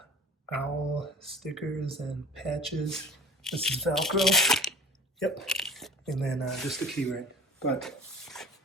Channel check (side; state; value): both; normal; correlation 0.41